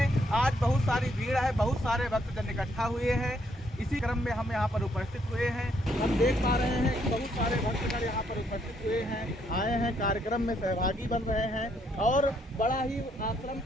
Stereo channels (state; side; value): normal; both; correlation 0.72